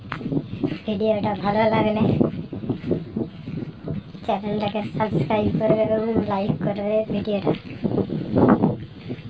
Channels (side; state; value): both; identical; correlation 1.00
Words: ভিডিওটা ভালো লাগলে চ্যানেলটাকে সাবস্ক্রাইব করবে এবং লাইক করবে। ভিডিওটা